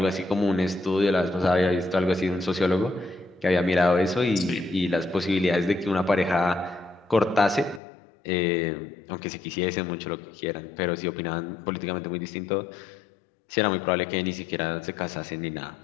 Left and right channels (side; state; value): right; drops out; at 7.8 s